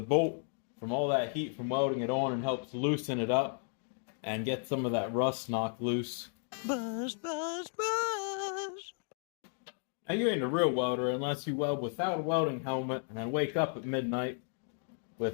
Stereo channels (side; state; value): right; silent; 55 dB below the other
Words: from all that heat from welding it on and helps loosen it up and get some of that rust knocked loose. Buzz, buzz, buzz. Now, you ain't a real welder unless you weld without a welding helmet and then wake up at midnight